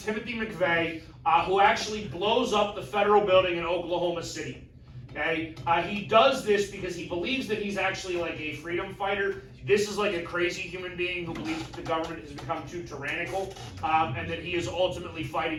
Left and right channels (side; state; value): both; identical; correlation 1.00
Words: McVeigh, who actually blows up the federal building in Oklahoma City. Okay? He does this because he believes that he's actually like a freedom fighter. This is like a crazy human being who believes that the government has become too tyrannical, and that he is ultimately fighting